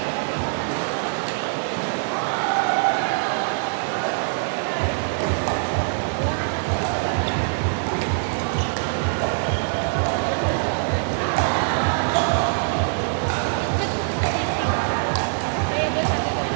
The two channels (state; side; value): silent; left; 63 dB below the other